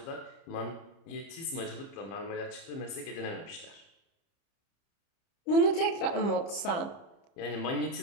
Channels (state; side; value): late; right; 30 ms